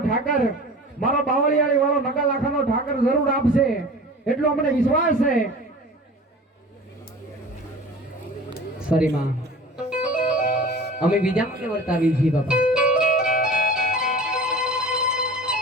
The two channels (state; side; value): normal; both; correlation 0.39